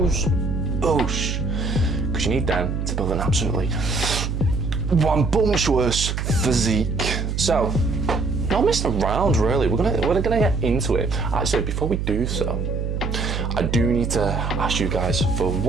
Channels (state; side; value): noise; right; hum, 2 dB below the sound